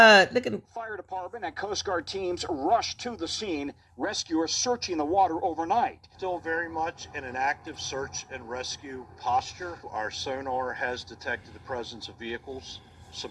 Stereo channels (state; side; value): identical; both; correlation 1.00